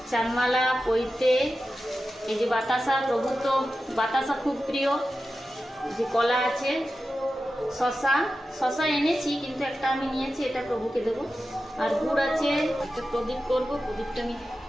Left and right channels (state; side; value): normal; both; correlation 0.92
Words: চানমালা, পৈতে, এই যে বাতাসা, প্রভু তো বাতাসা খুব প্রিয়। যে কলা আছে, শশা এনেছি, কিন্তু একটা আমি নিয়েছি, এটা প্রভুকে দেবো। আর গুড় আছে, একটা প্রদীপ করবো, প্রদীপটা আমি